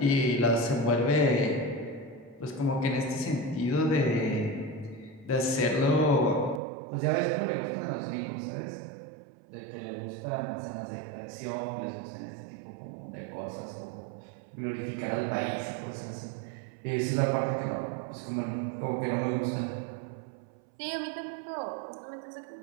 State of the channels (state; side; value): drops out; left; at 6.6 s